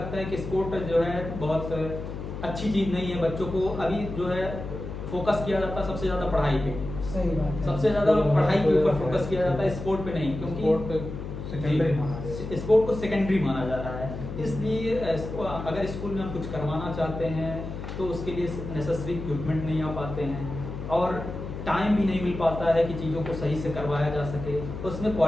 है कि स्पोर्ट जो है बहुत अच्छी चीज़ नहीं है, बच्चों को अभी जो है फोकस किया जाता है सबसे ज़्यादा पढ़ाई पे। सही बात है। सबसे ज़्यादा पढ़ाई के ऊपर फोकस किया जाता है, स्पोर्ट पे नहीं, क्योंकि स्पोर्ट को सेकेंडरी माना जा रहा है। इसलिए अगर स्कूल में हम कुछ करवाना चाहते हैं तो उसके लिए नेसेसरी इक्विपमेंट नहीं आ पाते हैं और टाइम भी नहीं मिल पाता है कि चीज़ों को सही से करवाया जा सके। उसमें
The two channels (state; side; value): noise; left; hum, 8 dB below the sound